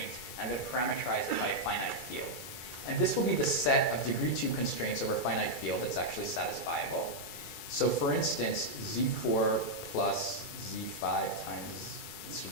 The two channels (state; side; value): late; right; 2.3 ms